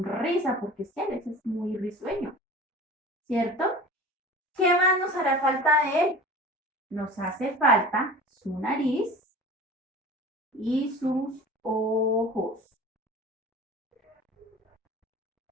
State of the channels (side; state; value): both; normal; correlation 0.38